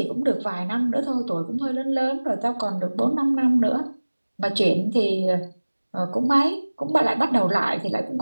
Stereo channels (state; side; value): inverted; both; correlation -1.00